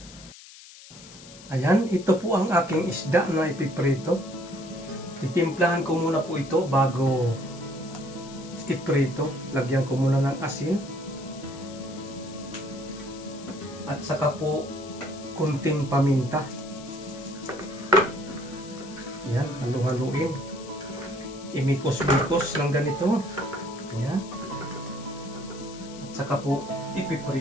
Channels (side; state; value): left; noise; hiss, 18 dB below the sound